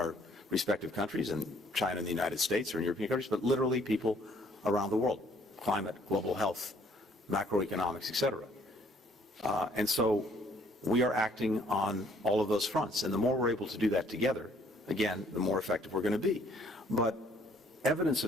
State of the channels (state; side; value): normal; both; correlation 0.62